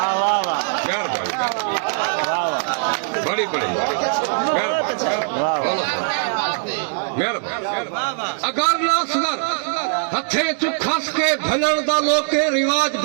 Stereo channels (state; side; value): silent; left; digital silence